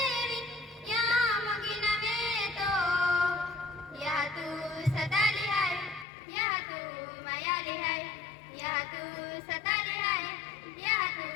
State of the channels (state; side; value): drops out; right; at 6.1 s